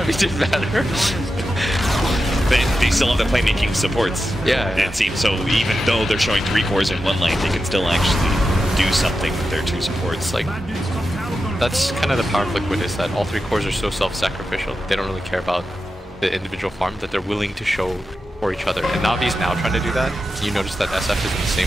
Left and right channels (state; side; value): normal; both; correlation 0.90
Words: didn't matter. They still have the playmaking supports. Yeah. It seems so. Even though they're showing 3 cores in one lane, they can still actually do something with their 2 supports. Like that's kind of the power of Liquid, is that all 3 cores are so self-sacrificial. They don't really care about the individual farm, that they're willing to show for each other. And Navi's now trying to do that. You notice that SF is in the